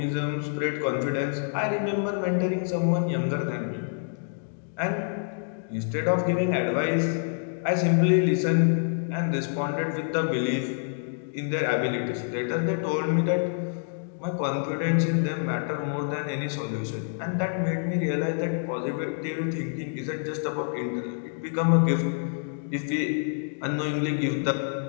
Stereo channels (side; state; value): right; silent; digital silence